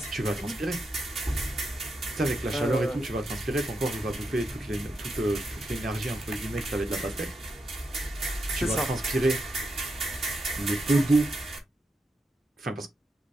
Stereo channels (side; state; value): both; normal; correlation 0.85